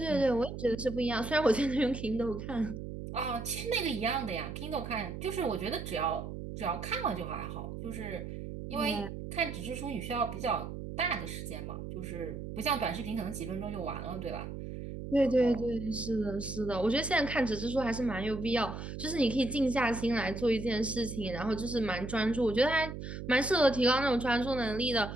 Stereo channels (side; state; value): right; noise; hum, 8 dB below the sound